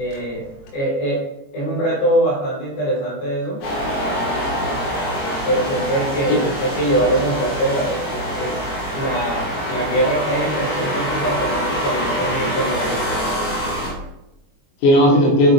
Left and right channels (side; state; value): right; late; 22 ms